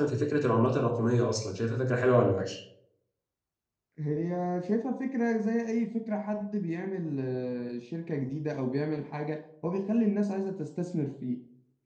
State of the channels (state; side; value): identical; both; correlation 1.00